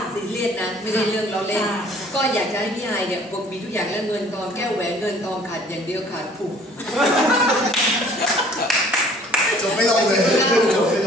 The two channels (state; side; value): normal; both; correlation 0.54